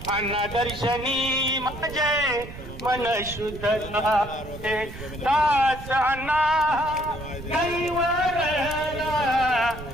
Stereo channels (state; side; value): noise; right; rumble, 12 dB below the sound